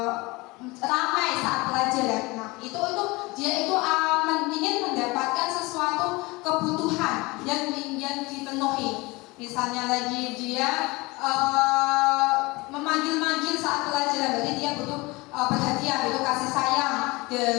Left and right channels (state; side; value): quieter; right; 23.4 dB